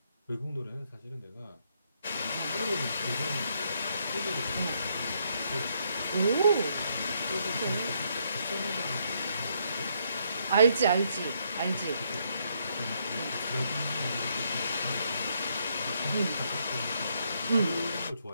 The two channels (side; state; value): both; inverted; correlation -0.73